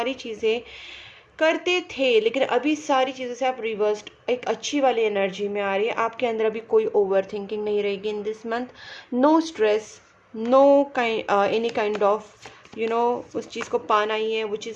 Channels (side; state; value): both; identical; correlation 1.00